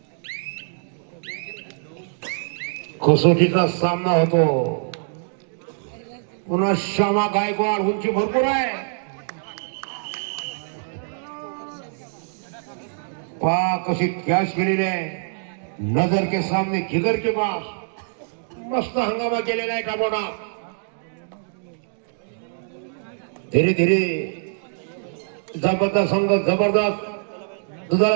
कसोटीचा सामना होतो पुन्हा श्यामा गायकवाड उंची भरपूर आहे पहा कशी कॅच केलेली आहे नजर के सामने जिगर के पास मस्त हंगामा केलेला आहे टाबोडा. धीरे धीरे जबरदस्त संघ जबरदस्त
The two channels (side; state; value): left; silent; digital silence